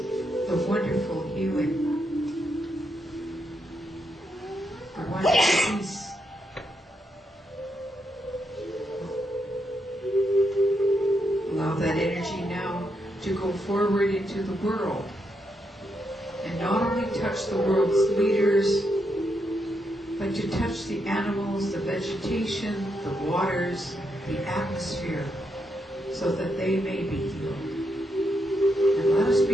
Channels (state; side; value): normal; both; correlation 0.81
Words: the wonderful healing, the wonderful peace. Allow that energy now to go forward into the world, and not only touch the world's leaders, but to touch the animals, the vegetation, the waters, the atmosphere, so that they may be healed. And let us